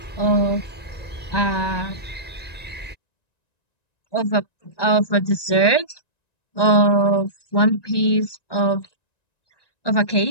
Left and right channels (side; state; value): right; late; 1.9 ms